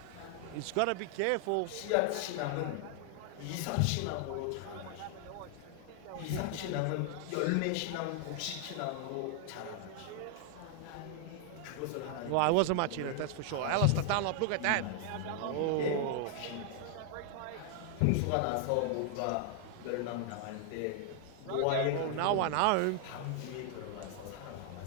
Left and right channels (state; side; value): different; both; correlation 0.00